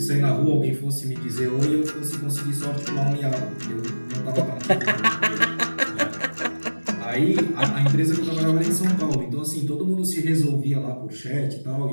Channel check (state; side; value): inverted; both; correlation -1.00